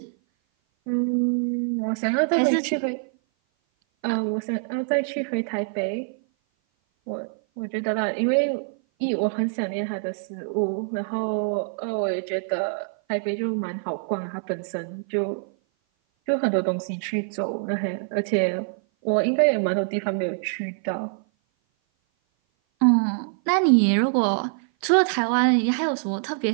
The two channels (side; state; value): left; silent; 56 dB below the other